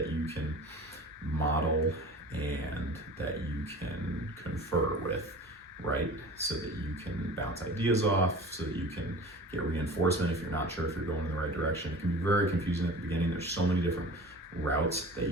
you can model and that you can confer with, right? So that you can bounce ideas off, so that you can get reinforcement if you're not sure if you're going in the right direction. It can be very confusing at the beginning. There's so many different routes that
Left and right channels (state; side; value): normal; both; correlation 0.39